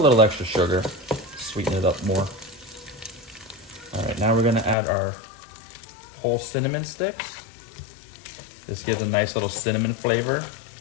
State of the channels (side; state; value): right; drops out; at 4.8 s